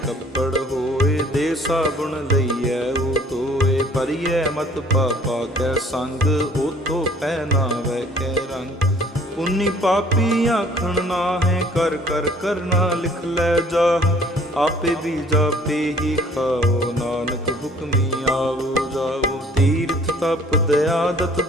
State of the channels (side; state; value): both; normal; correlation 0.55